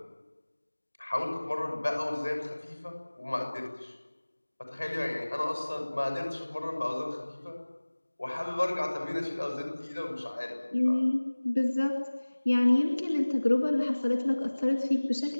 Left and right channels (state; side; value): inverted; both; correlation -1.00